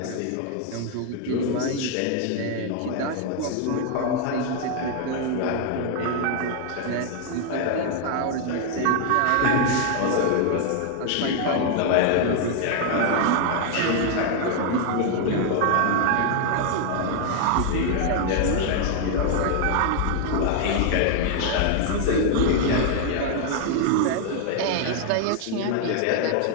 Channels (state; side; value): different; both; correlation 0.00